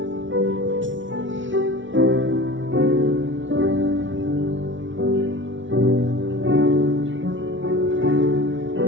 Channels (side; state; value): left; late; 0.56 ms